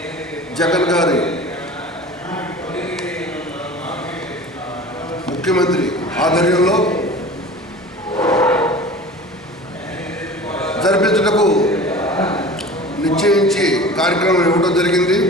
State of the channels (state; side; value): normal; both; correlation 0.39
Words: జగన్ గారి ముఖ్యమంత్రి ఆధ్వర్యంలో జరిపించుటకు నిశ్చయించి కార్యక్రమం ఇవ్వడం జరిగింది.